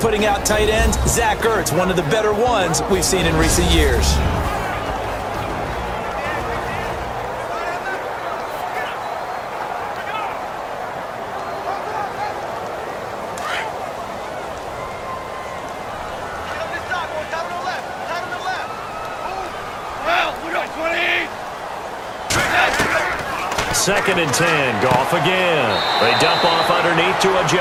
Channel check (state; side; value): identical; both; correlation 1.00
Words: out tight ends. Zach Ertz, one of the better ones we've seen in recent years. Second and 10, Goff again. They dump off underneath to